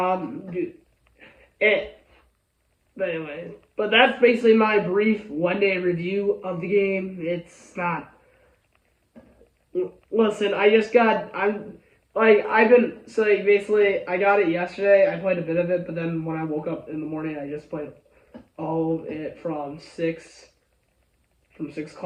But anyway. But that's basically my brief one-day review of the game. It's not... Listen, I got it yesterday. I played a bit of it, but then when I woke up in the morning, I just played all of it from 6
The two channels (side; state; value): both; identical; correlation 1.00